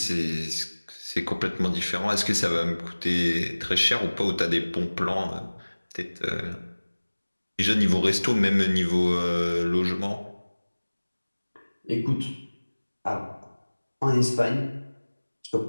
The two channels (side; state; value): both; inverted; correlation -1.00